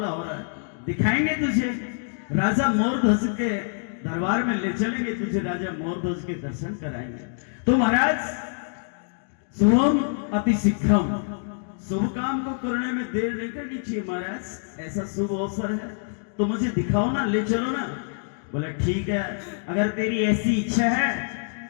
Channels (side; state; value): right; silent; digital silence